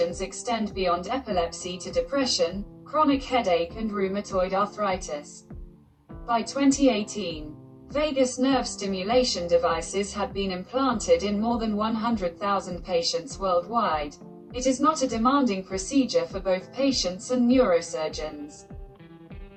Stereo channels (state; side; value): identical; both; correlation 1.00